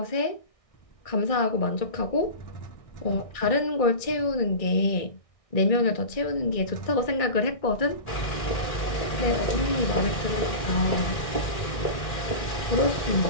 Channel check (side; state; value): right; late; 1.6 ms